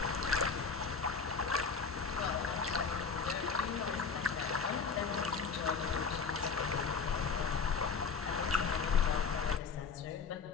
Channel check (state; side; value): quieter; right; 5.4 dB